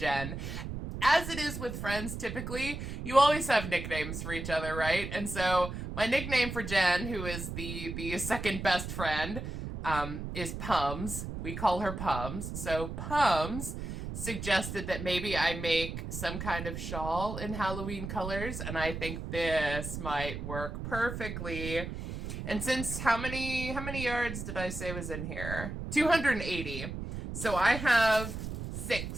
as it is with friends typically, you always have nicknames for each other, right? And so my nickname for Jen, who is the second best friend, is Pums. We call her Pums. So Pums suggested that maybe I make some kind of shawl in Halloween colors, and I think this might work perfectly. And since how many yards did I say was in here? 280. So I have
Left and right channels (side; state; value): right; noise; rumble, 6 dB below the sound